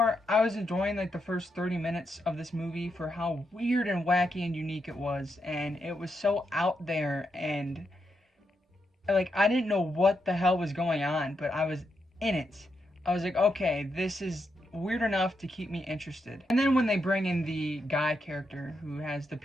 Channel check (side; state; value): both; normal; correlation 0.82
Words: I was enjoying like the first 30 minutes of this movie for how weird and wacky and unique it was. And it was so out there, and like I didn't know what the hell was going on, but I was in it. I was like, okay, this is weird enough to keep me interested. And then when they bring in the guy character who has the